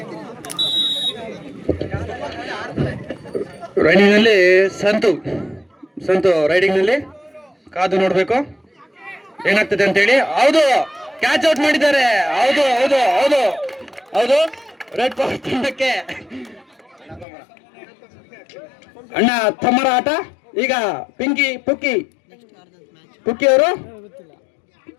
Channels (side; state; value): right; drops out; at 17.2 s